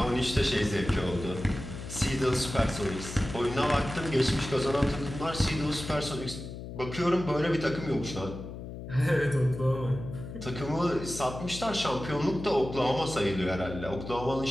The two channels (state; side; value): noise; left; hum, 10 dB below the sound